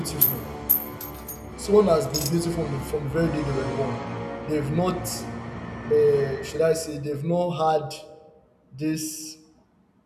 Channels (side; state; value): both; identical; correlation 1.00